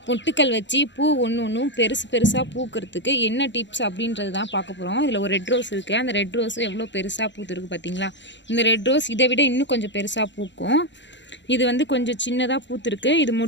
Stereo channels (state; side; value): late; right; 0.53 ms